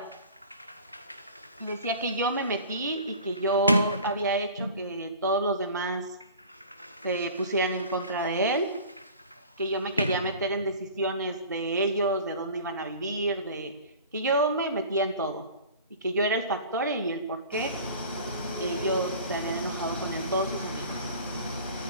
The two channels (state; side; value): inverted; both; correlation -0.42